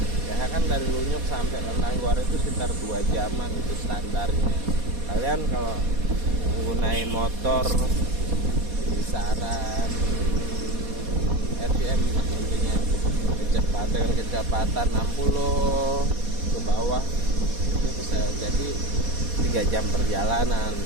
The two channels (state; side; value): late; left; 4.2 ms